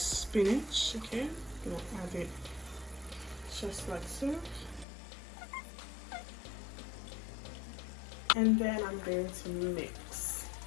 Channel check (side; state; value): right; drops out; at 4.9 s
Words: Okay, I'm gonna add it just like so. And then I'm going to mix.